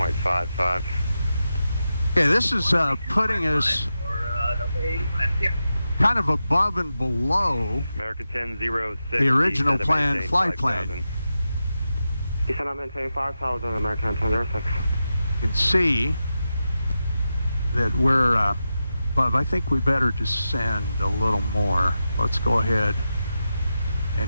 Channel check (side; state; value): both; inverted; correlation -0.90